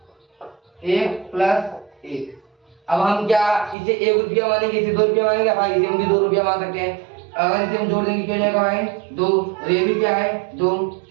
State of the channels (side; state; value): left; drops out; at 3.8 s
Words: 1 + 1। अब हम क्या इसे 1 रुपया मानेंगे, इसे 2 रुपया मानेंगे भाई, इसे हम भी 2 रुपया मान सकते हैं। अगर इसे हम जोड़ देंगे क्या हो जाएगा भाई 2, और ये भी क्या है 2,